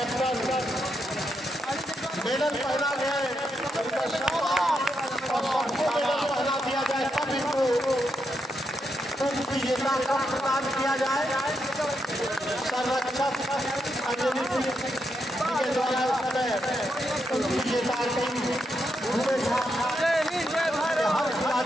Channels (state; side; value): normal; both; correlation 0.82